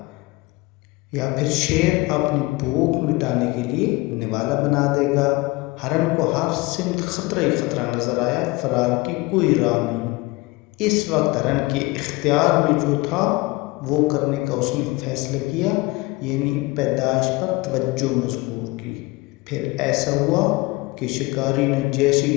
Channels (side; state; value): right; quieter; 22.7 dB